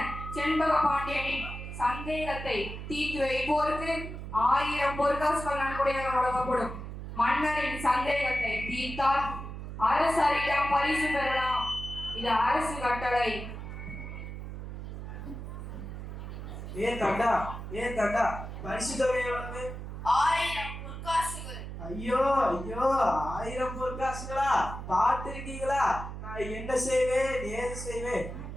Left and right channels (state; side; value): noise; right; hum, 8 dB below the sound